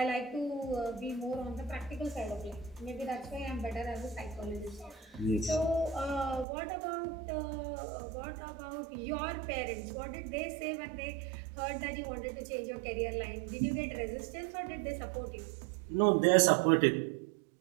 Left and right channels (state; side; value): drops out; left; at 6.5 s